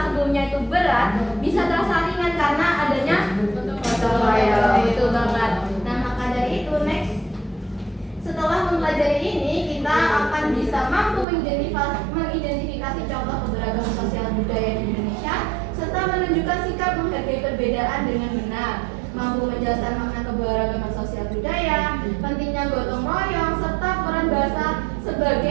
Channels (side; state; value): left; drops out; at 11.2 s